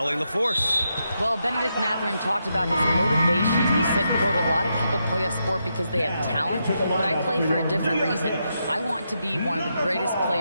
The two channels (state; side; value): inverted; both; correlation -0.83